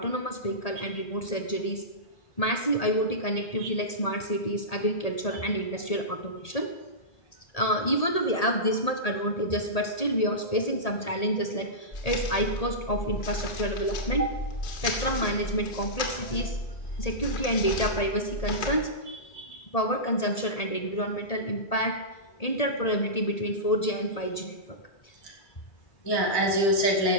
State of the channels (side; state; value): right; late; 1.8 ms